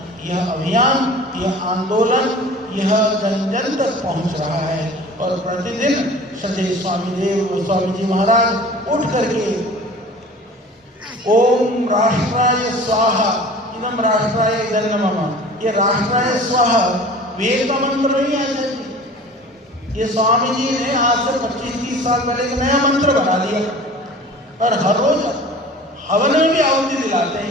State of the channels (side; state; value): both; normal; correlation 0.42